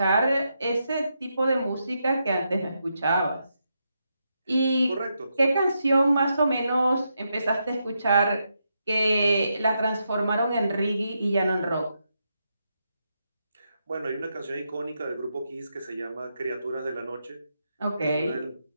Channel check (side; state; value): both; inverted; correlation -0.83